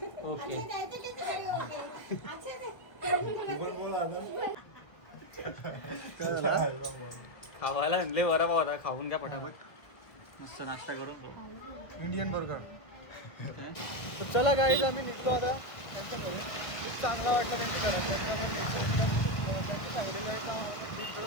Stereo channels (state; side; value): late; right; 1.5 ms